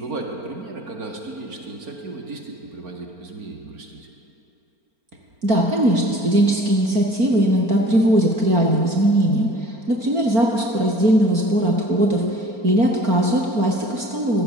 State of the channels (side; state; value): left; late; 4.4 ms